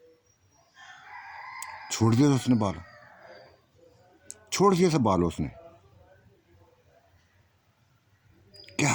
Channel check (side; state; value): both; identical; correlation 1.00